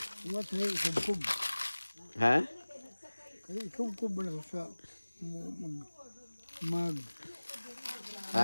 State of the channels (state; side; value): inverted; both; correlation -1.00